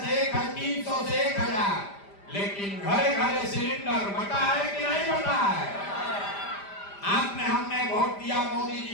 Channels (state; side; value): late; right; 5.0 ms